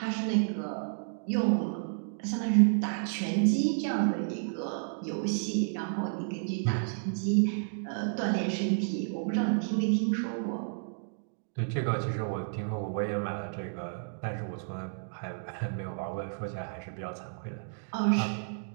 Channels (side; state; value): left; silent; digital silence